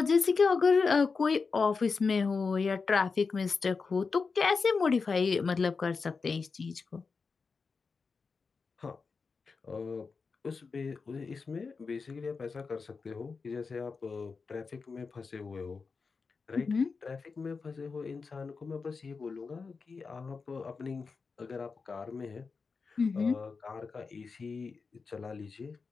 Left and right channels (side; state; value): right; quieter; 4.8 dB